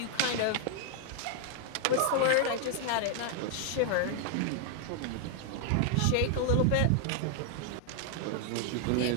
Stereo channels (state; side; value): different; both; correlation 0.00